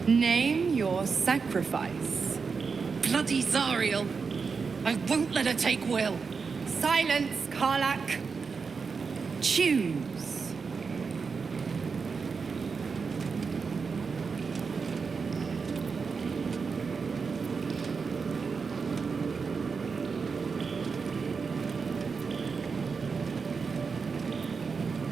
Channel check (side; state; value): left; quieter; 5.2 dB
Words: Name your sacrifice. Bloody Zariel! I won't let her take Wyll. Silence, Karlach. Choose.